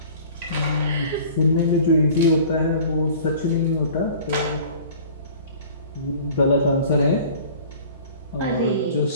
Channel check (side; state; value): both; inverted; correlation -0.46